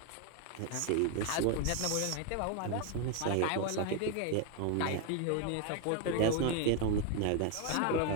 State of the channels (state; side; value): different; both; correlation 0.01